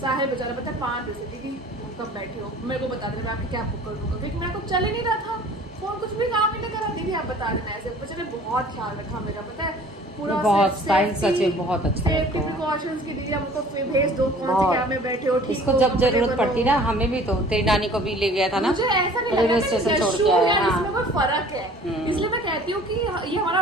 साहिल बेचारा पता है 5 बजे दीदी कब बैठे हो, मेरे को बता देना, मैं आपकी कैब बुक कर दूंगा, क्योंकि मेरे को चल ही नहीं रहा था, फोन कुछ भी काम ही नहीं करा। दीदी आप बता देना ऐसे। बच्चे ने बहुत ख्याल रखा मेरा, पता है पूरा बहुत स्टाइल सच है, बहुत अच्छा सेफ्टी लगता है। प्रिकॉशंस की दीदी हमको भेज दो कौन सी कैब में बैठे हो, ठीक इसको हो, जब जरूरत comfortable पड़ती हो। ना, हमें भी तो तेरी नानी को भी ले गया था ना, मुझे ऐसा नहीं रेलवे लगा स्टेशन कि छोड़ यशु के आया। या हाँ, इसमें कोई फर्क है, इसलिए मैं कहती हूँ कि ये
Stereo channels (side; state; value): both; normal; correlation 0.49